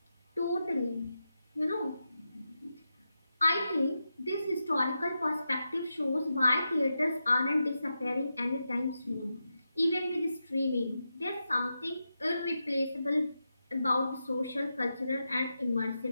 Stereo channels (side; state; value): both; inverted; correlation -0.88